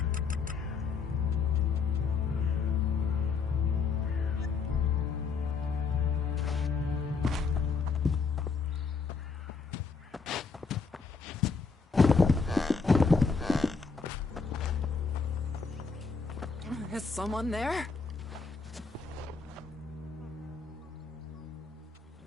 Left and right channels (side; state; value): right; quieter; 4.9 dB